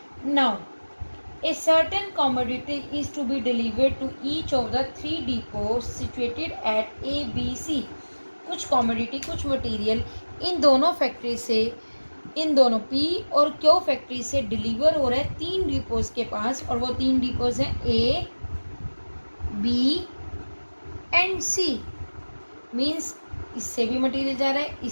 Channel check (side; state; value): both; inverted; correlation -1.00